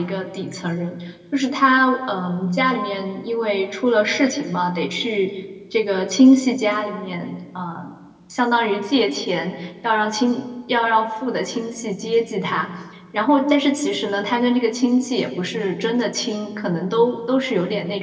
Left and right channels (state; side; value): identical; both; correlation 1.00